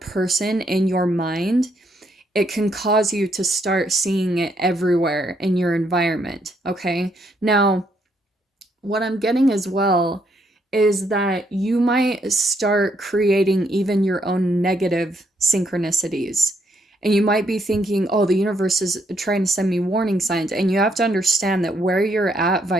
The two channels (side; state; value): both; normal; correlation 0.73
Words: in your mind, it can cause you to start seeing it everywhere in your environment. Okay. Now, what I'm getting as well is that you might start creating even your own negative synchronicities. And you might be thinking, oh, the universe is trying to send me warning signs. And you have to understand that where you're at